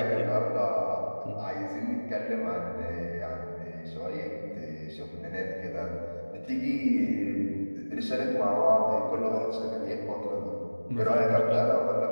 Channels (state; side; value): inverted; both; correlation -1.00